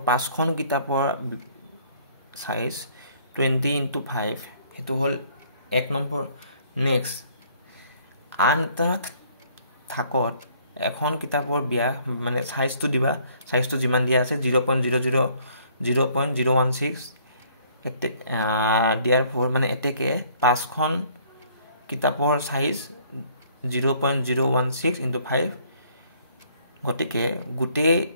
5খন কিতাপৰ সাইজ 20 into 5 হেতু হল 1 নম্বৰ নেক্সট আন এটা থাকত এখন কিতাপৰ ব্যাস মানে সাইজটো দিবা সাইজটো যিমান দিয়া আছে 0.016 দিয়াৰ ফৰ মানে এতেকে 5খন কিতাপৰ সাইজ 0.016 into 5 গতিকে গুটে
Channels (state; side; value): inverted; both; correlation -0.61